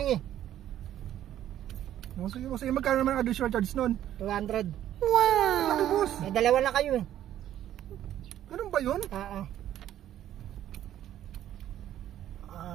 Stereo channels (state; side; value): quieter; left; 11.8 dB